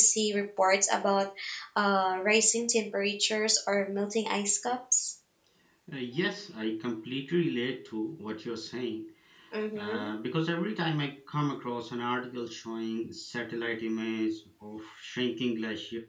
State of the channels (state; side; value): identical; both; correlation 1.00